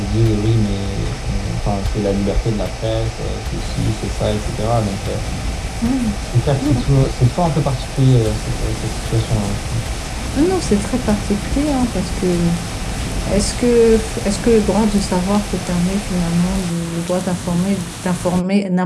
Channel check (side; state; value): both; identical; correlation 1.00